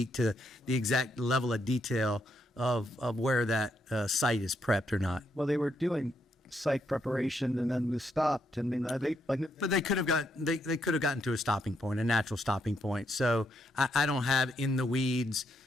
to the exact level of detail of where that site is prepped or not. Well, they were doing site preparation and then we stopped. I mean, but they could have gotten to a stopping point, a natural stopping point. So I don't have in the weeds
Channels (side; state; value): both; normal; correlation 0.77